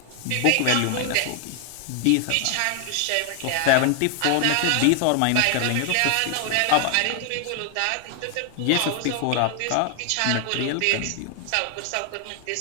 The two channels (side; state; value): both; different; correlation 0.00